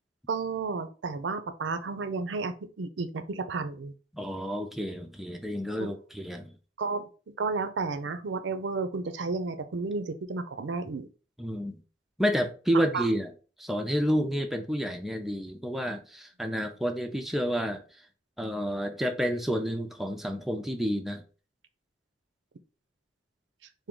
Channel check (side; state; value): both; normal; correlation 0.62